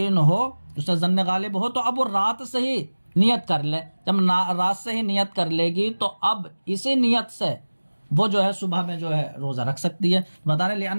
ہو، اس سے ظن غالب ہو، تو اب وہ رات سے ہی نیت کر لے. جب رات سے ہی نیت کر لے گی تو اب اسی نیت سے وہ جو ہے صبح میں جو ہے روزہ رکھ سکتی ہے. بتا رہے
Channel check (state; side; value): inverted; both; correlation -1.00